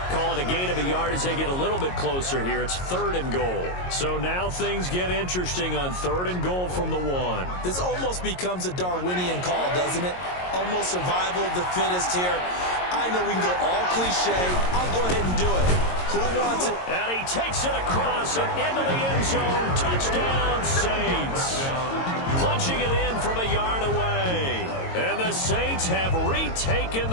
Call it a gain of a yard as they get a little bit closer here. It's third and goal. So now things get interesting on third and goal from the 1. This almost becomes a Darwinian call, doesn't it? Almost survival of the fittest here. I know we can go all cliche. I'll go ahead and do it. Who wants it? And he takes it across and into the end zone. Touchdown, Saints. Punching it in from a yard away. And the Saints have retaken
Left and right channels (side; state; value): right; late; 22 ms